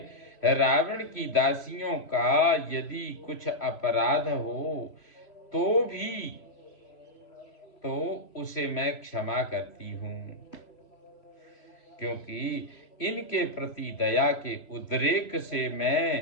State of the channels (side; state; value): right; late; 3.0 ms